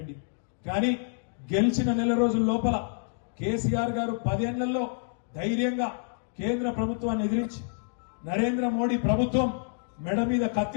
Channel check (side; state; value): right; silent; digital silence